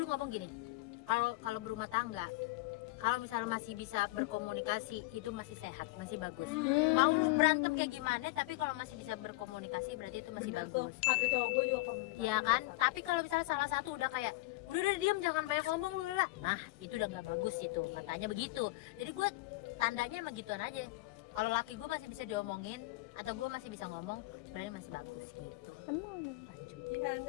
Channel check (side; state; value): right; quieter; 22.1 dB